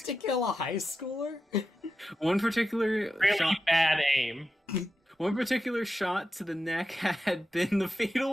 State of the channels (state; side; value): normal; both; correlation 0.90